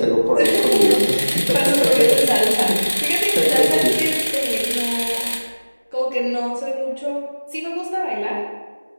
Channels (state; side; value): inverted; both; correlation -1.00